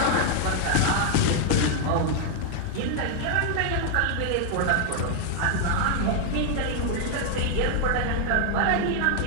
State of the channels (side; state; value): both; different; correlation 0.00